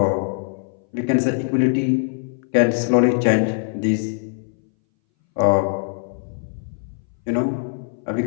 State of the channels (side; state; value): right; silent; 61 dB below the other